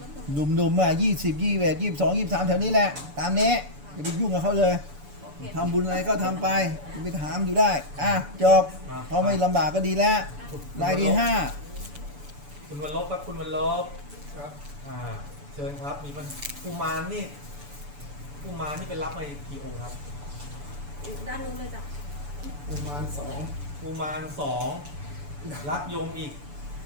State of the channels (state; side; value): late; left; 6.9 ms